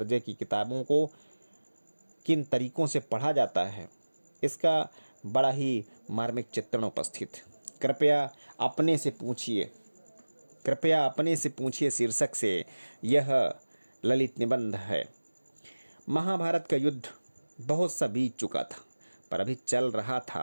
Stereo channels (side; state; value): both; inverted; correlation -1.00